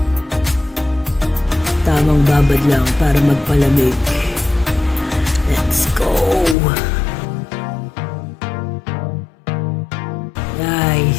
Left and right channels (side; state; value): right; drops out; at 6.6 s